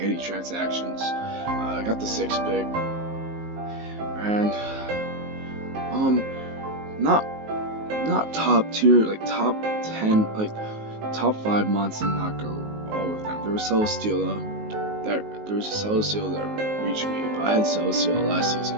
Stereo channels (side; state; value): left; late; 19 ms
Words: any transactions. I got the 6th pick, and not top tier, like top 10, like top 5 months, and not go all of them. There was there was a Celestial that reached me, but I had Celestial last